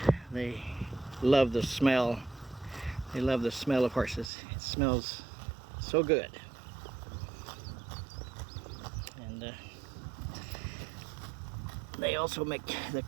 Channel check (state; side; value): drops out; left; at 4.3 s